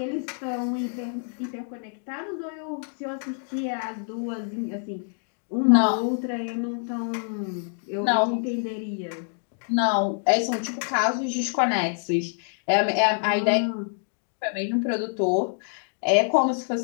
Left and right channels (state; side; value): silent; right; 58 dB below the other